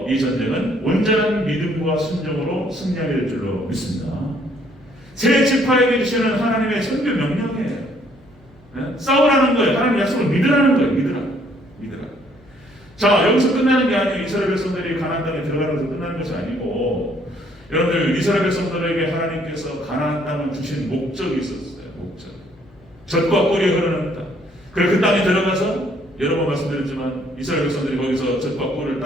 이 전쟁은 온전한 믿음과 순종으로 승리하게 될 줄로 믿습니다. 새 지파에게 주시는 하나님의 선교 명령이에요. 싸우라는 거예요. 하나님 약속을 믿으라는 거예요. 믿으라. 자, 여기서 끝나는 게 아니에요. 이스라엘 백성들이 가나안 땅에 들어가는 것에서 끝나는 것이 아니고, 여러분들, 이스라엘 백성들에게 하나님께서 가나안 땅을 주신 목적이 있었어요. 목적. 젖과 꿀이 흐르는 땅. 그래서 그 땅에 들어가서 여러 번 말씀드렸지만 이스라엘 백성들이 거기서 젖과 꿀을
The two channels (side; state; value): left; noise; hum, 28 dB below the sound